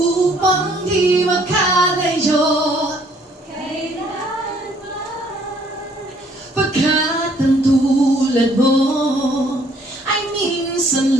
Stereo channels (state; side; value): normal; both; correlation 0.63